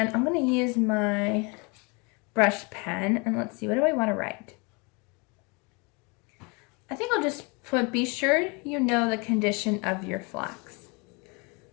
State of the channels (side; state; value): right; quieter; 30.4 dB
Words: I'm going to use my brush pen. And let's see, what do I want to write? I think I'll just put, be sure you know the condition of your flocks.